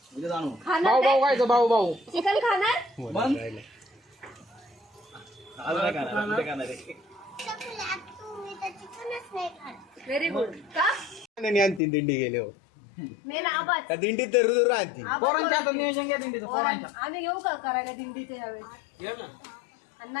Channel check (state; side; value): drops out; right; at 11.8 s